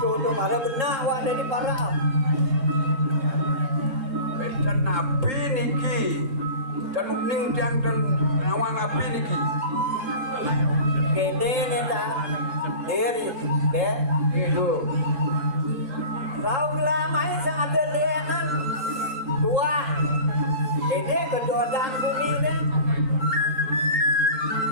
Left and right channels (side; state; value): left; late; 3.7 ms